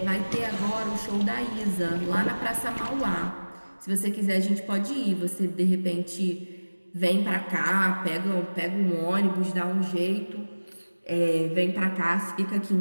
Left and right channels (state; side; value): inverted; both; correlation -1.00